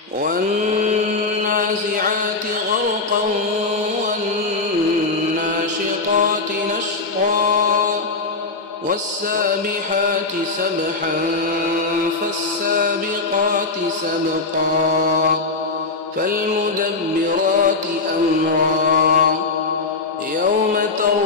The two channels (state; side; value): quieter; right; 3.7 dB